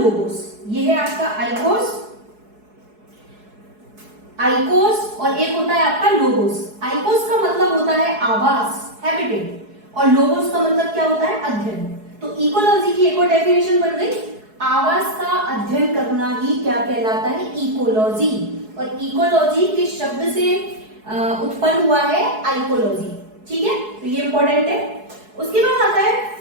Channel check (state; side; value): late; left; 4.7 ms